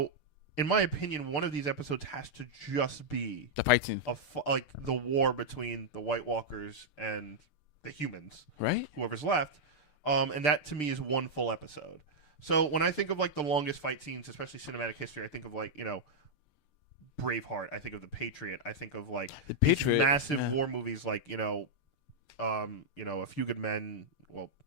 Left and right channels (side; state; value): right; late; 6.7 ms